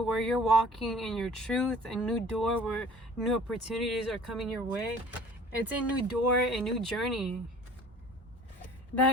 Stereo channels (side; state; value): both; normal; correlation 0.48